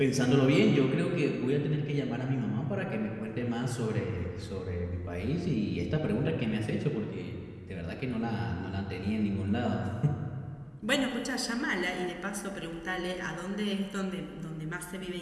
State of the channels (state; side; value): identical; both; correlation 1.00